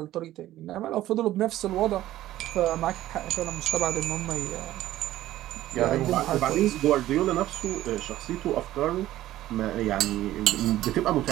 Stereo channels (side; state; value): left; quieter; 14.4 dB